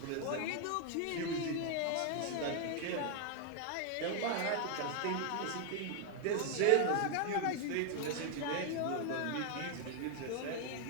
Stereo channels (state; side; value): different; both; correlation 0.00